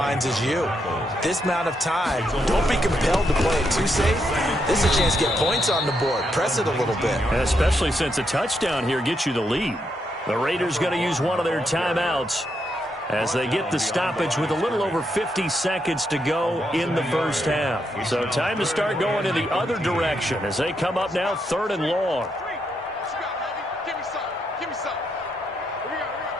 as you. This amount of time, don't be compelled to play it too safe. This is a chance to get points on the board. Press it a little bit. And especially since a touchdown here gets you the lead. The Raiders going to use one of their timeouts as they get the stoppage with a little over 50 seconds to go in the first half. So time to start going in the other direction as they come up now 3rd and long.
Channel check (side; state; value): both; normal; correlation 0.80